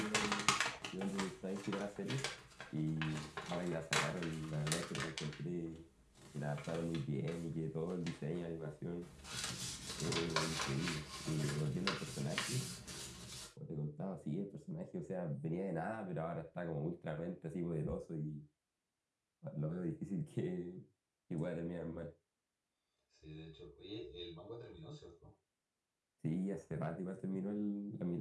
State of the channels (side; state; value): both; identical; correlation 1.00